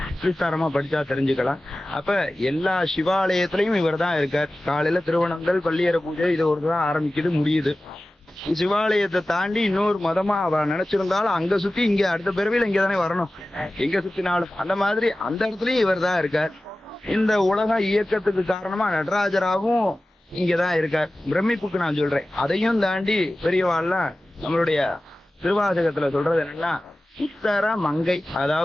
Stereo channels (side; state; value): both; normal; correlation 0.96